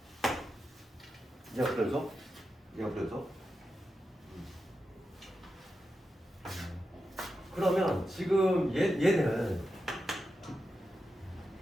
얘가 불연속? 얘가 불연속? 그러면 지금 얘는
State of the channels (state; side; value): normal; both; correlation 0.89